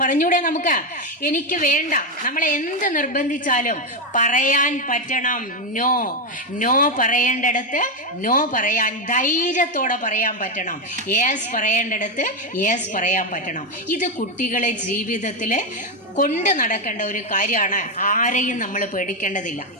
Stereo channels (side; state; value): both; normal; correlation 0.07